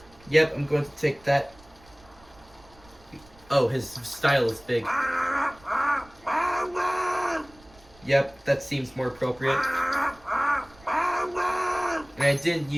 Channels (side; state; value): right; noise; rumble, 26 dB below the sound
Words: Yep, I'm going to take that. Oh, his style is big. Yep, that seems more appropriate. And I didn't